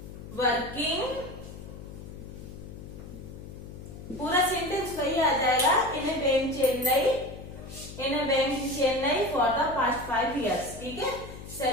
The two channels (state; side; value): noise; left; hum, 13 dB below the sound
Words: वर्किंग, पूरा सेंटेंस वही आ जाएगा, in a bank Chennai, in a bank Chennai for the past 5 years, ठीक है।